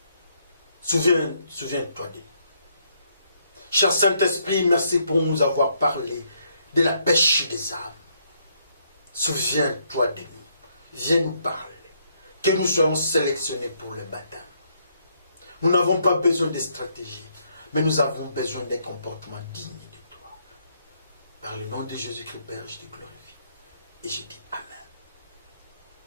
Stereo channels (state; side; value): inverted; both; correlation -0.72